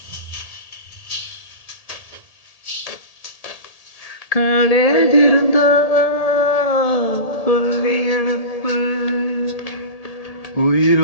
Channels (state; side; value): late; right; 1.8 ms